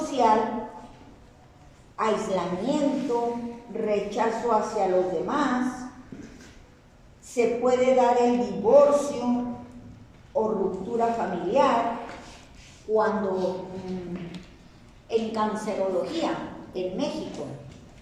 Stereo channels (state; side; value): identical; both; correlation 1.00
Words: aislamiento, rechazo hacia los demás, se puede dar el divorcio o ruptura familiar cuando en cancerología en México